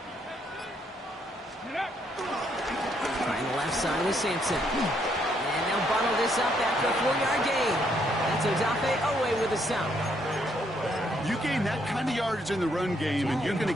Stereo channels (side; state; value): both; normal; correlation 0.72